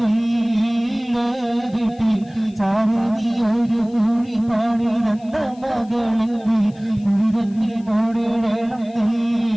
ചാരതി ഒരു കുഴി പണിതന്ന മകളെങ്കിൽ കുഴി തന്നിൽ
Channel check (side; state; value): left; noise; hiss, 29 dB below the sound